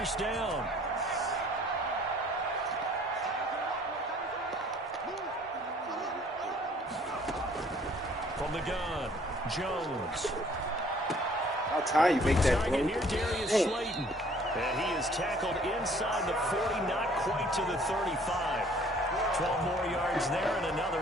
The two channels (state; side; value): normal; both; correlation 0.57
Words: down. From the gun, Jones. How time you make that, bro? Here, Darius Slayton. And he is tackled inside the 40, not quite to the 35. 12 more yards there and another